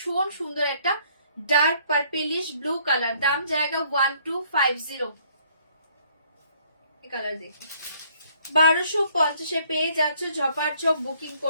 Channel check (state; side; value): inverted; both; correlation -0.63